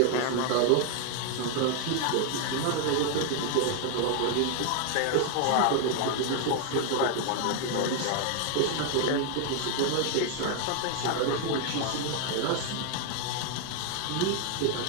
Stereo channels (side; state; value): both; different; correlation 0.00